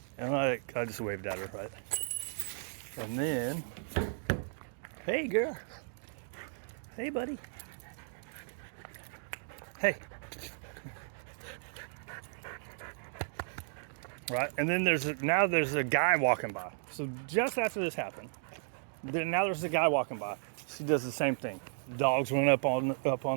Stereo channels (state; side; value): silent; left; digital silence